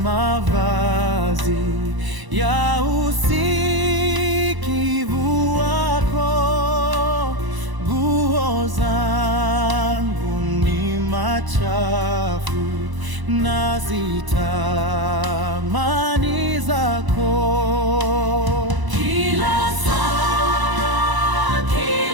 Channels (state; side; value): late; left; 1.0 ms